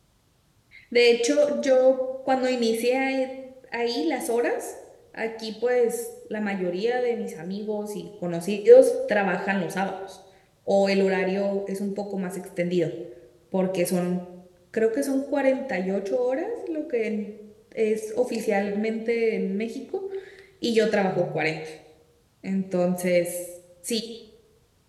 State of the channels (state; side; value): identical; both; correlation 1.00